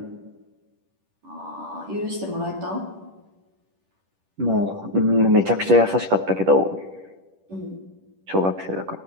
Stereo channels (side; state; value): left; late; 10 ms